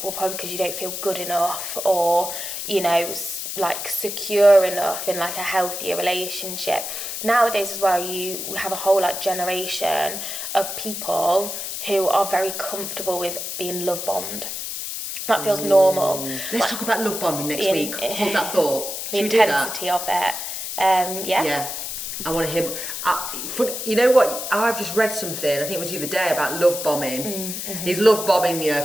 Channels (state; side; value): noise; left; hiss, 5 dB below the sound